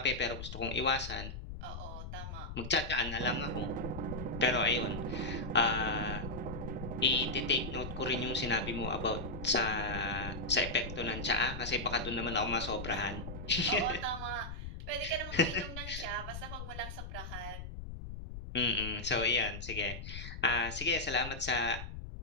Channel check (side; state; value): left; noise; rumble, 9 dB below the sound